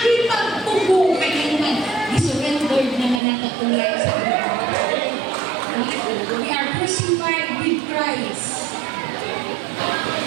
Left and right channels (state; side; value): drops out; left; at 3.2 s